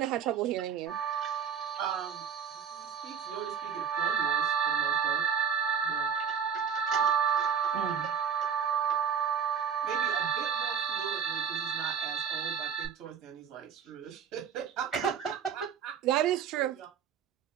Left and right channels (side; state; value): left; quieter; 7.6 dB